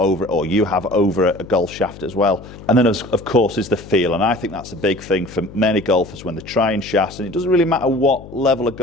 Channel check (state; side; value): noise; left; hum, 16 dB below the sound